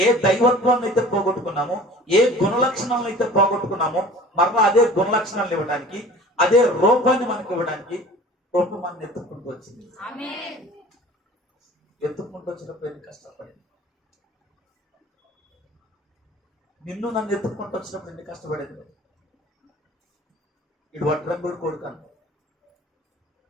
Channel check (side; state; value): both; normal; correlation 0.44